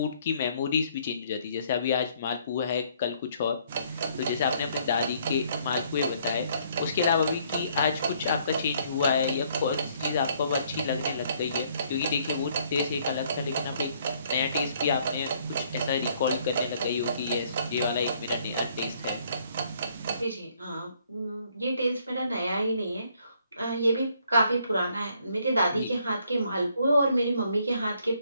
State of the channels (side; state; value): both; inverted; correlation -0.66